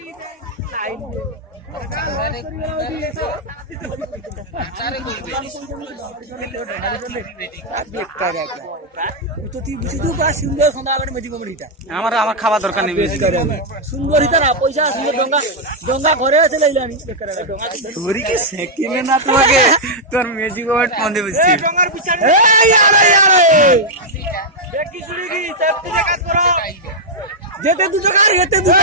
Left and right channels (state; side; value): normal; both; correlation -0.05